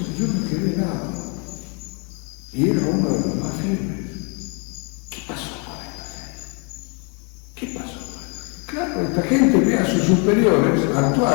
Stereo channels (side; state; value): right; quieter; 36.1 dB